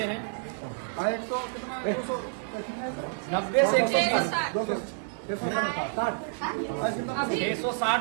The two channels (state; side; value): silent; left; digital silence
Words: हैं। 90 से